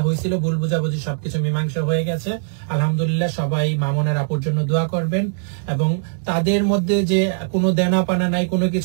হয়েছিল ভুল বুঝাবুঝি সবকিছু মীমাংসা হয়ে গেছে আলহামদুলিল্লাহ। সবাই মামুনের আপুর জন্য দোয়া করবেন, এবং তাদের মধ্যে যে কোনো দেনা পানা নাই, কোনো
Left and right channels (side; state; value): left; silent; digital silence